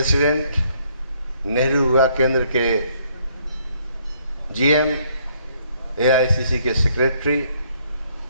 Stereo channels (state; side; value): inverted; both; correlation -0.67